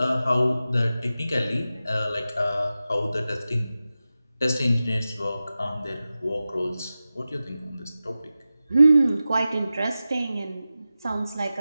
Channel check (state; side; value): inverted; both; correlation -0.94